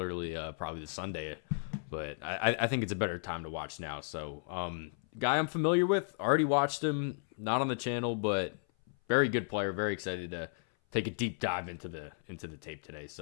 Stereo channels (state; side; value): silent; right; 55 dB below the other